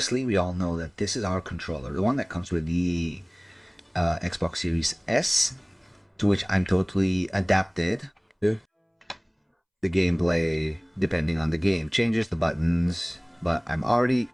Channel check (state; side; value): identical; both; correlation 1.00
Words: we all know that this is our controller, the one that comes with the Xbox Series S, to which I'm totally adapted. The gameplay, depending on the game, changes the buttons, but I'm already